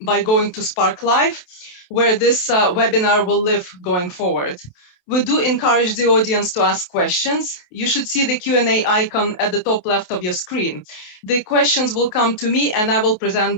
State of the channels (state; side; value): late; right; 28 ms